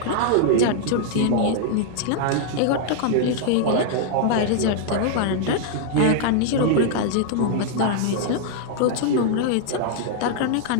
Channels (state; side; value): different; both; correlation -0.01